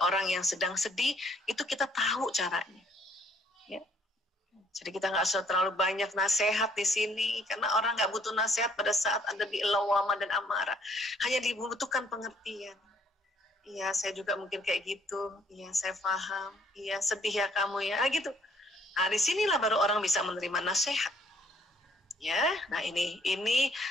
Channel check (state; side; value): normal; both; correlation 0.64